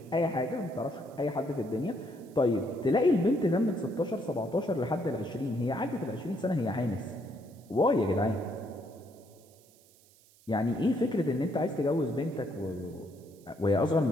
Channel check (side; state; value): right; noise; hiss, 28 dB below the sound